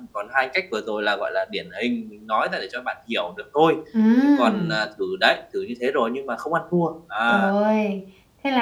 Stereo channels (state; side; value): identical; both; correlation 1.00